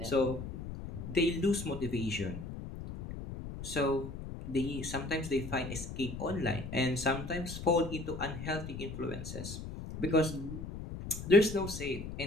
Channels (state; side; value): noise; left; rumble, 8 dB below the sound